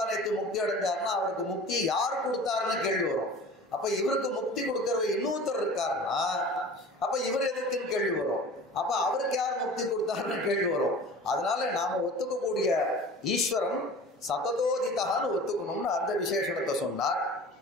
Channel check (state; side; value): normal; both; correlation 0.40